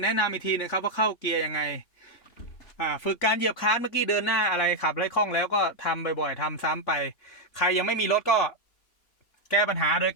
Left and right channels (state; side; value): late; right; 3.5 ms